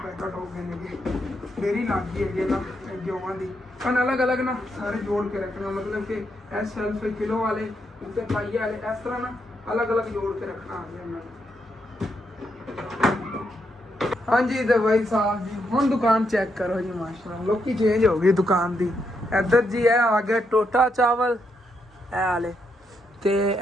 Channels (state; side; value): normal; both; correlation 0.80